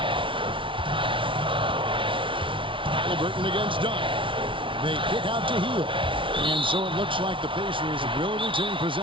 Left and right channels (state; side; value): late; left; 0.25 ms